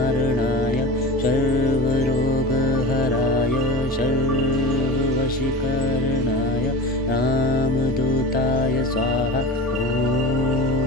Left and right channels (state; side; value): noise; right; rumble, 19 dB below the sound